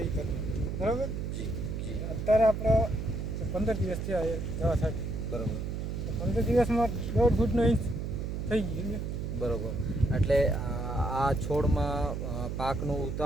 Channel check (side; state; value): right; noise; hum, 4 dB below the sound